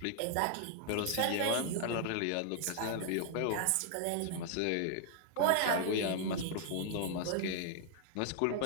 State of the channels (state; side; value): different; both; correlation 0.00